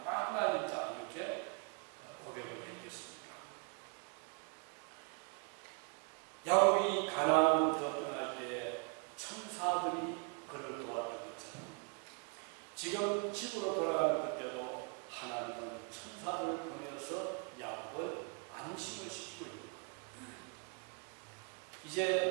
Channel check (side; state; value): left; quieter; 36.8 dB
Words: 마하나임이다 이렇게 고백을 했겠습니까? 야곱이 가나안으로부터 떠날 때 천사들이 그를 도왔던 것처럼 지금 집으로 돌아가는 그때도 하나님은 천사들을 보내서 야곱을 안심을 시키고 있는 거예요.